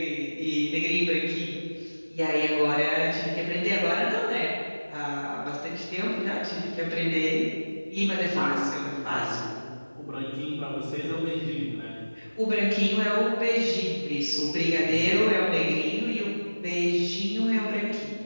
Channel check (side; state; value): both; inverted; correlation -1.00